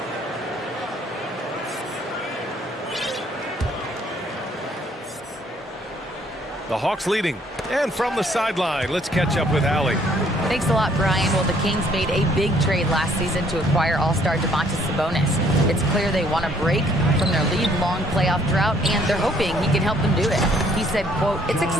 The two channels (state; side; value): normal; both; correlation 0.63